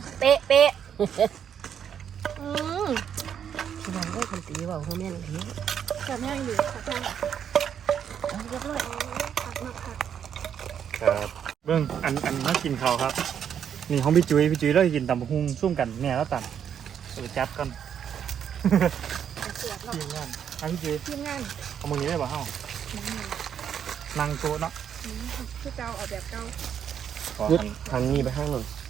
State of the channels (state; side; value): quieter; left; 8.5 dB